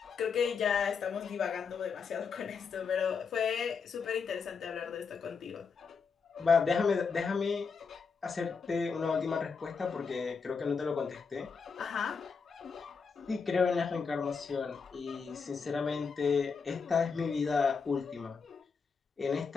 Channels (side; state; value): right; quieter; 5.5 dB